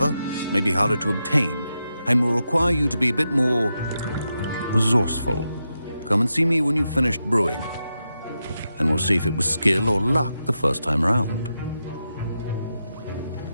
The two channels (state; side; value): inverted; both; correlation -0.87